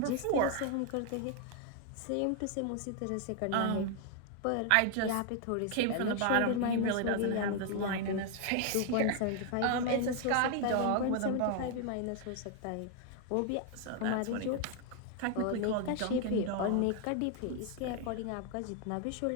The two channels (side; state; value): both; different; correlation 0.00